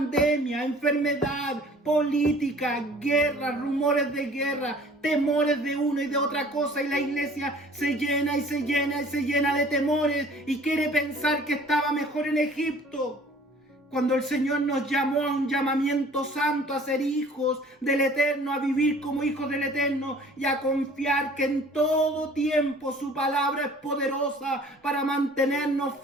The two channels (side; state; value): both; normal; correlation 0.50